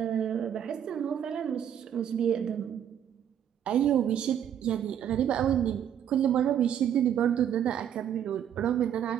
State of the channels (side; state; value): left; quieter; 9.5 dB